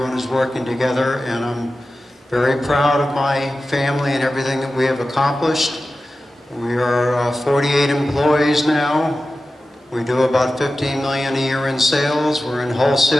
is working together. And I'm very proud of my family and everything that we have accomplished. We are 48 employees now. We do about $15 million a year in sales. We're in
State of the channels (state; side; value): normal; both; correlation 0.94